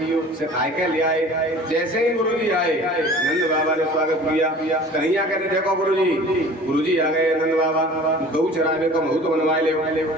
सिखाए के ले आए। जैसे ही गुरुजी आए नंद बाबा ने स्वागत किया। कन्हैया कहते देखो गुरुजी आ गए। नंद बाबा गौ चराने को महूत बनवा ले।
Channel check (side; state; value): both; normal; correlation 0.44